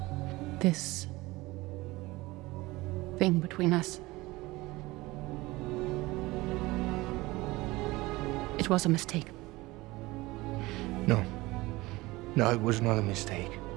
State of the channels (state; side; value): quieter; left; 20.6 dB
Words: This thing between us. It was a mistake. No. No, it was not a mistake.